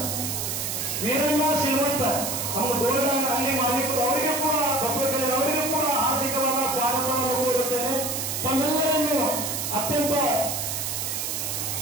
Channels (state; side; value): noise; right; hiss, 2 dB below the sound